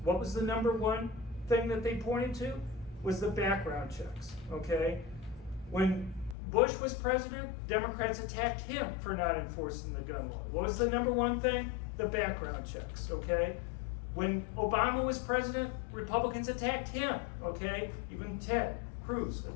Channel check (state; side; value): drops out; right; at 6.4 s